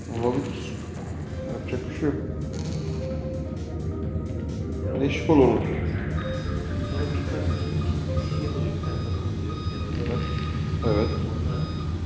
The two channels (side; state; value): both; identical; correlation 1.00